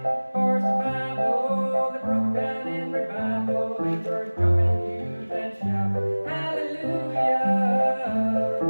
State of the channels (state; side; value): inverted; both; correlation -1.00